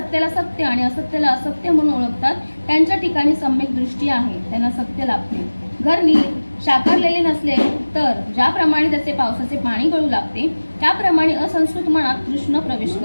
सत्य आणि असत्याला असत्य म्हणून ओळखतात त्यांच्या ठिकाणी सम्यक दृष्टी आहे, त्यांना सत्य लाभते. घर नीट शाकारलेले नसले तर ज्याप्रमाणे त्याचे पावसाचे पाणी गळू लागते त्याप्रमाणे असंस्कृत मनात कृष्ण प्रवेश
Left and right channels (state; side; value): inverted; both; correlation -1.00